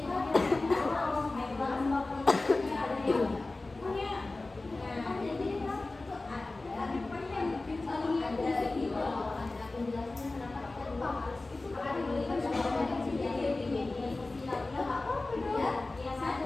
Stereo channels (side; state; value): right; quieter; 3.2 dB